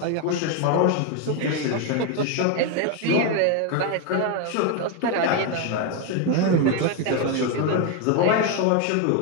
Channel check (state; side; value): different; both; correlation 0.01